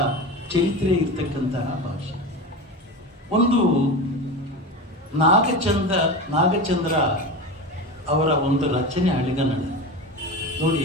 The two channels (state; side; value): normal; both; correlation 0.25